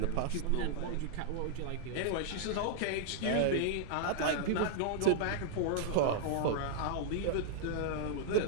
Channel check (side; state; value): both; different; correlation -0.01